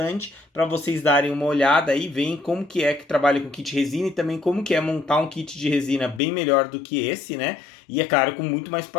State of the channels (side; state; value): right; drops out; at 6.2 s